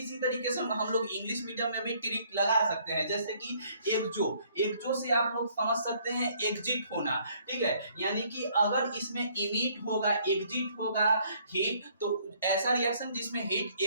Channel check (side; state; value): both; inverted; correlation -0.63